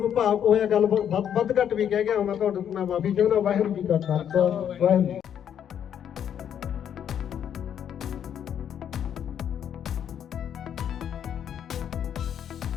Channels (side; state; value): right; quieter; 9.1 dB